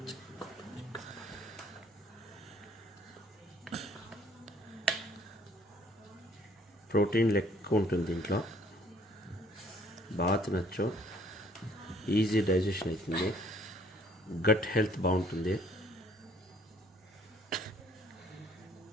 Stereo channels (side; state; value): both; normal; correlation 0.60